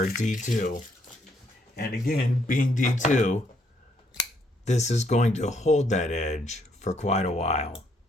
D2. And again, being D2, this is going to hold that edge for quite a while.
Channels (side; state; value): both; normal; correlation 0.71